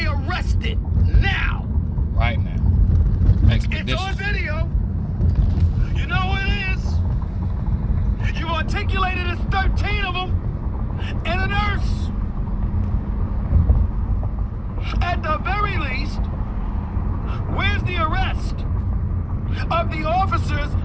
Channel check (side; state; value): both; identical; correlation 1.00